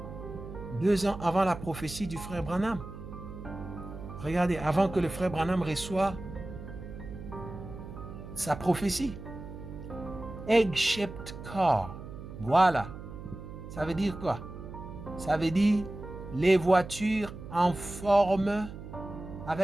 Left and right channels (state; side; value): noise; right; hum, 12 dB below the sound